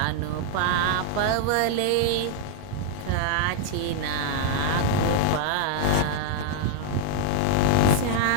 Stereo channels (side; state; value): both; different; correlation 0.00